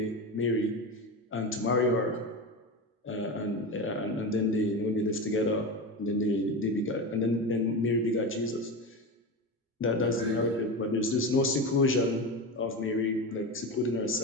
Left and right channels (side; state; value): both; normal; correlation 0.21